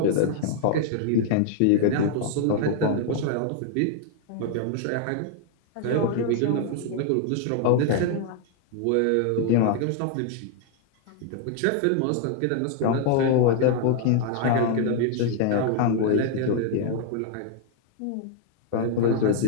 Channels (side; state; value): both; different; correlation 0.00